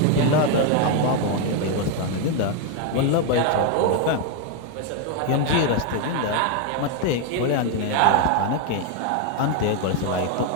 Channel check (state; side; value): different; both; correlation 0.01